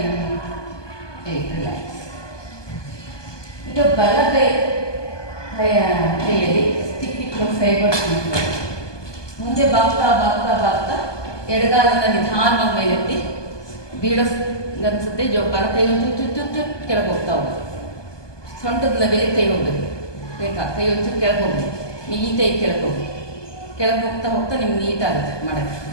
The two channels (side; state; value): right; late; 1.2 ms